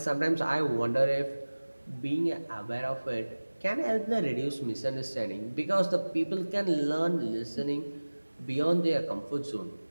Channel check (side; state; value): both; inverted; correlation -1.00